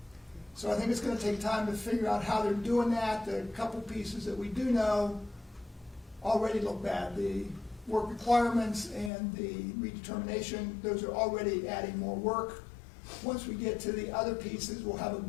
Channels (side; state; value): right; drops out; at 9.1 s